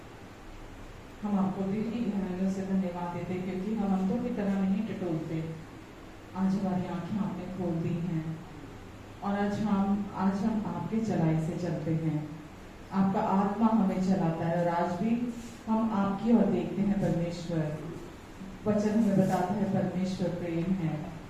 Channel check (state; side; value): identical; both; correlation 1.00